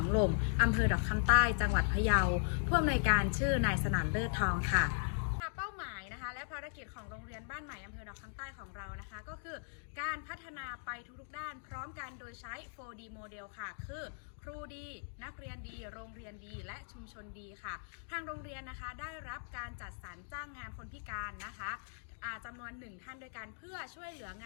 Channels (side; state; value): right; silent; digital silence